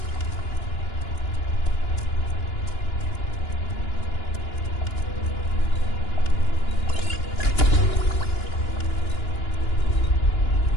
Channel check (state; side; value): late; right; 2.9 ms